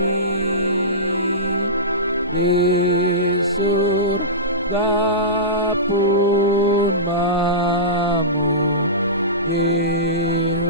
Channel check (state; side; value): normal; both; correlation -0.20